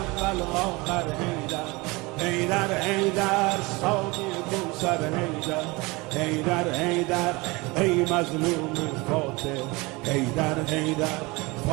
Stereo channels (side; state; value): left; quieter; 24.3 dB